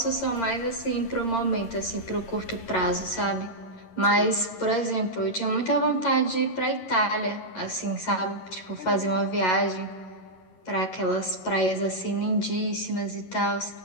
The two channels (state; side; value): late; right; 11 ms